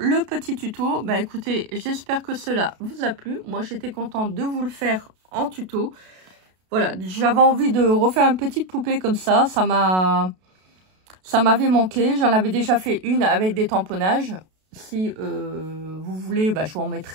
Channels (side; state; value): left; late; 32 ms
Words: le petit tuto. Bah écoutez, j'espère que cela vous a plu. Moi, j'étais contente de vous le faire en tuto. Voilà, j'avais envie de refaire une petite poupée comme ça. Ça m'a Ça m'avait manqué. J'en avais déjà fait une avec des tamponnages. Si vous voulez, bah, je vous en